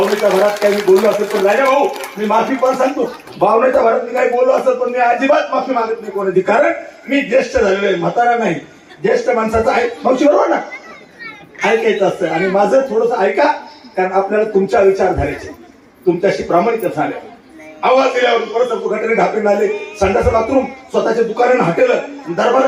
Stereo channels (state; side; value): identical; both; correlation 1.00